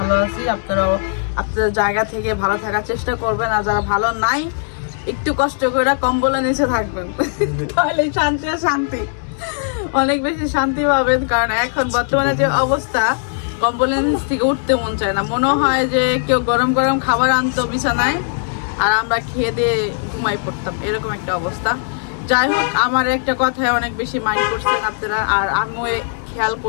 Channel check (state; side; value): silent; right; 67 dB below the other